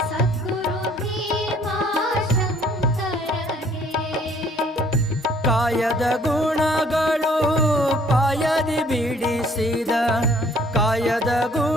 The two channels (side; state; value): both; normal; correlation 0.59